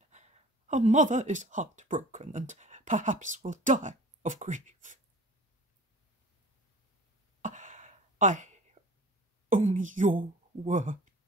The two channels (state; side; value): normal; both; correlation 0.43